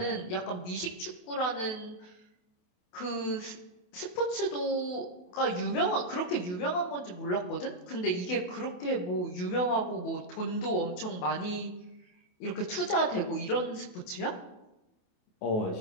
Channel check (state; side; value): late; right; 28 ms